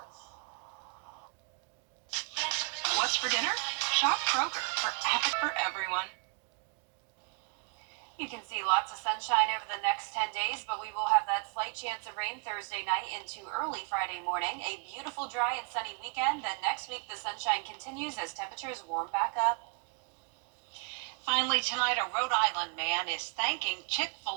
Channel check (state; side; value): quieter; left; 34.9 dB